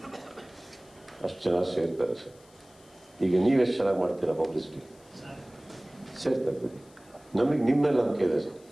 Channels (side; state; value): left; noise; hiss, 28 dB below the sound